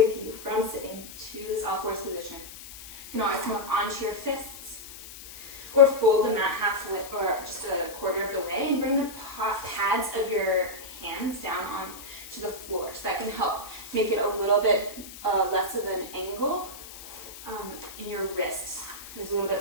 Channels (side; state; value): left; noise; hiss, 14 dB below the sound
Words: you from sitting to this all fours position. You can always come up onto your fists or fold the mat halfway or just a quarter of the way and bring the pads of your hands down onto the floor. So that can help make it a little bit less of an angle in your wrists. There's a little